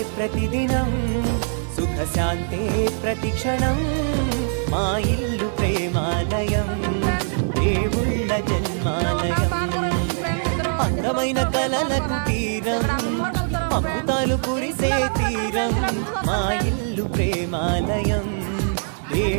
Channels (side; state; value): left; silent; digital silence